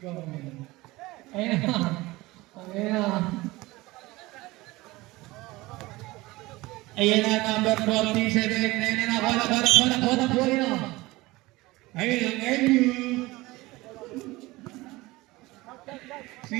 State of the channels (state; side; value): quieter; left; 20.5 dB